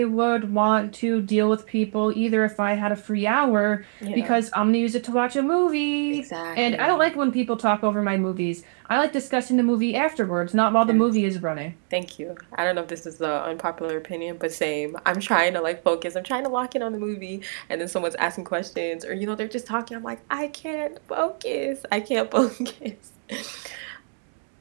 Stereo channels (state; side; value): silent; left; digital silence